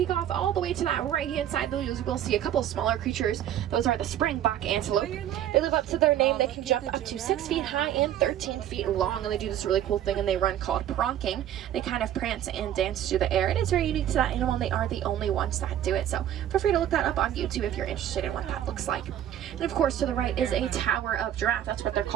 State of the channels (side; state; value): left; quieter; 11.2 dB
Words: off all the way to that right-hand side, you will see a couple smaller creatures. Those are the springbok antelope. They live up to their name. They can jump up to 6 feet high and 13 feet long, and they do this really cool thing, and they run called pronking. They kind of prance and dance through the air. It is very unique to that animal, and they are the only ones that do it. So feel free to look that up on YouTube if you're interested in what that looks like. And of course, to the right is a tower of giraffe. That's what they're